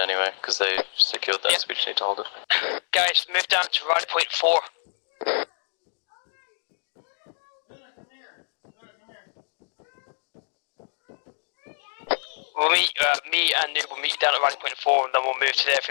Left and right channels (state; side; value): silent; right; digital silence